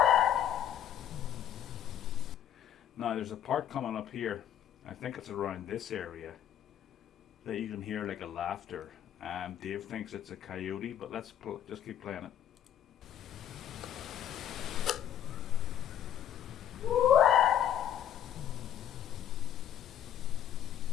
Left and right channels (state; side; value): quieter; right; 10.3 dB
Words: Now there's a part coming up here, I think it's around this area, that you can hear like a laughter. Dave thinks it's a coyote, but let's just keep playing it.